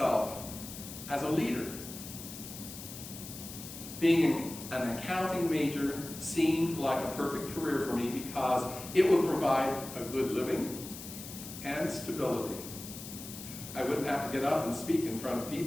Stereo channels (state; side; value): noise; left; hiss, 12 dB below the sound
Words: as a leader. Being an accounting major seemed like a perfect career for me because it would provide a good living and stability. I wouldn't have to get up and speak in front of